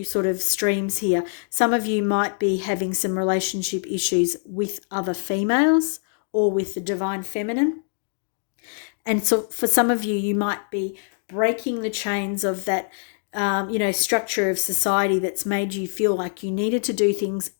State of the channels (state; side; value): silent; right; 63 dB below the other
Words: sort of streams here. Some of you might be having some relationship issues with other females, or with the divine feminine. And so for some of you, you might be breaking the chains of that structure of society that's made you feel like you needed to do things